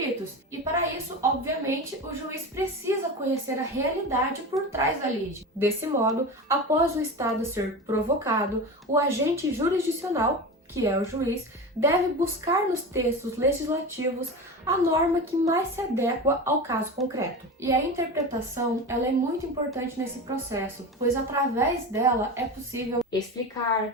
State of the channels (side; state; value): both; normal; correlation 0.27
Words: e, para isso, obviamente, o juiz precisa conhecer a realidade por trás da lide. Desse modo, após o Estado ser provocado, o agente jurisdicional, que é o juiz, deve buscar nos textos legislativos a norma que mais se adequa ao caso concreto. E a interpretação, ela é muito importante nesse processo, pois através dela é possível